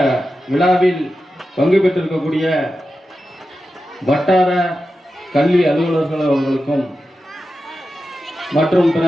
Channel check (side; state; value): both; normal; correlation 0.91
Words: விழாவில் பங்கு பெற்றிருக்கக்கூடிய வட்டார கல்வி அலுவலர்கள் அவர்களுக்கும் மற்றும் பிற